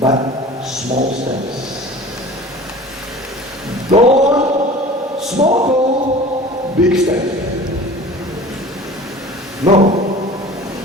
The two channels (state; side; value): normal; both; correlation 0.41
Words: small steps. Don't small goal, big step. No,